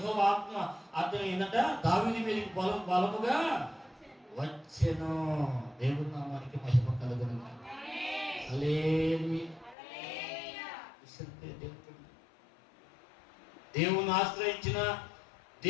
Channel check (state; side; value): drops out; right; at 9.8 s